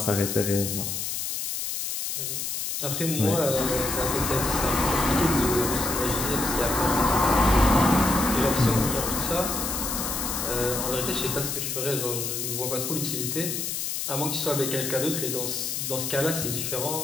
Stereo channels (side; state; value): left; noise; hiss, 3 dB below the sound